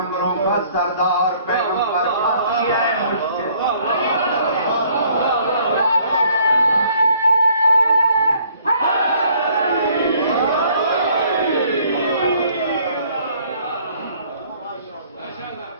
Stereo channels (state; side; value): inverted; both; correlation -0.61